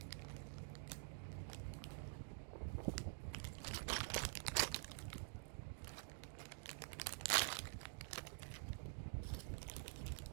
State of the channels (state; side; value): silent; left; digital silence